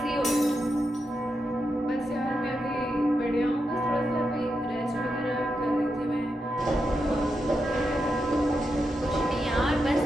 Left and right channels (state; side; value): normal; both; correlation 0.86